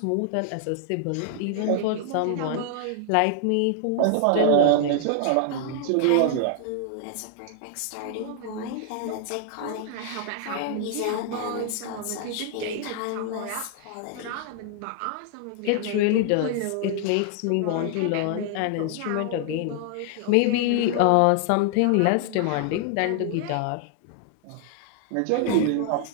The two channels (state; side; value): different; both; correlation -0.01